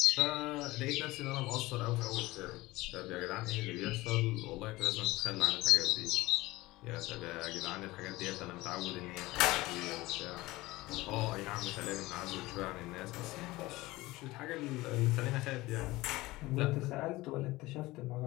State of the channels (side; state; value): right; quieter; 19.6 dB